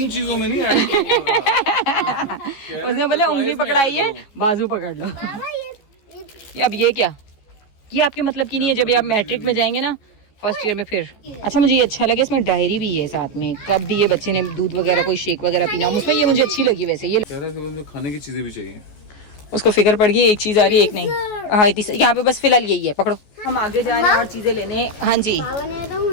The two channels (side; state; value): right; late; 14 ms